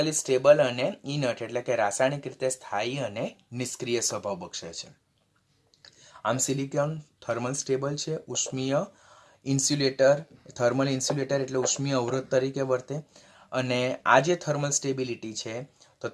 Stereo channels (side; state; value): both; identical; correlation 1.00